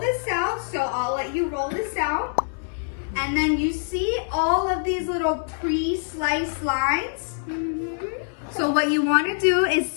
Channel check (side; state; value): right; silent; 62 dB below the other